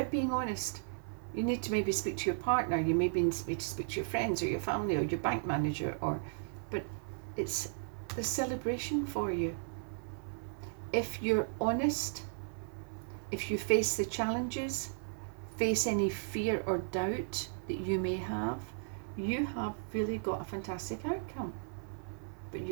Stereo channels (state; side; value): silent; left; 54 dB below the other